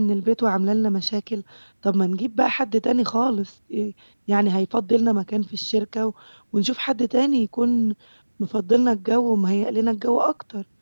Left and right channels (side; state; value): both; inverted; correlation -1.00